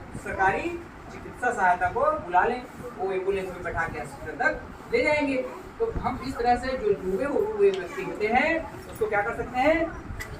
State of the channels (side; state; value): both; identical; correlation 1.00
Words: सरकारी चिकित्सा सहायता को बुला लें, वो एम्बुलेंस में बैठा के अस्पताल तक ले जाएंगे। तो हम इस तरह से जो डूबे हुए व्यक्ति होते हैं उसको क्या कर सकते हैं,